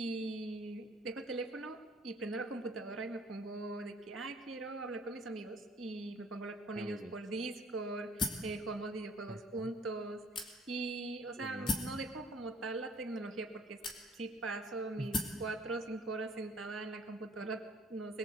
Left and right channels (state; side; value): normal; both; correlation 0.56